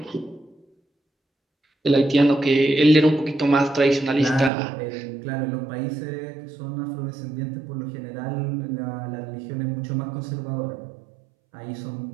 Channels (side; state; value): left; drops out; at 4.5 s